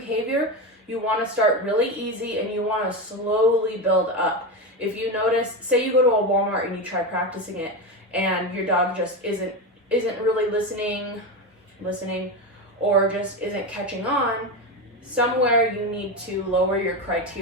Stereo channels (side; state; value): both; normal; correlation 0.17